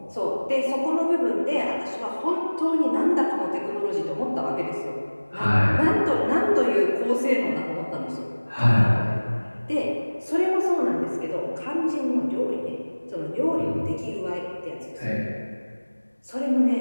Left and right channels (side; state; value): both; inverted; correlation -1.00